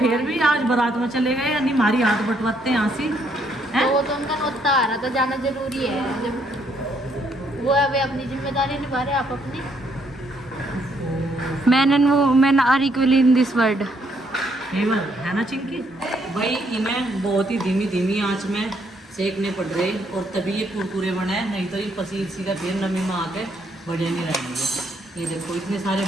भी आज बारात में चले गए, यानी हमारी हाथ बटवाते हैं हंसी हैं? वो तो उनका नोता आ रहा था, जाना जरूरी है। जब वो अभी अपनी जिम्मेदारी निभा रहे, आप अपनी। Man are equal in this world. केवल है ना चिंकी भाई, इन्हें बहुत ही धीमी धीमी आंच में सेकने पड़ रहे और तभी ये कुरकुरे बने, नहीं तो ये पसीर सी का फिर नमी में आके बढ़े नहीं रहेंगे। ये देखो इतने सारे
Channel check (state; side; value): normal; both; correlation 0.71